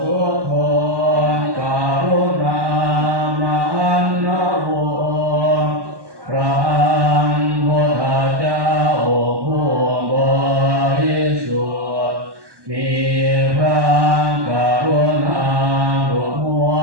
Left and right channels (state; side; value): late; left; 1.2 ms